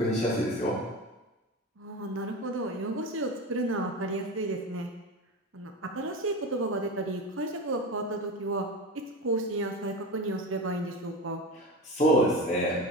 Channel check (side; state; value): both; normal; correlation 0.26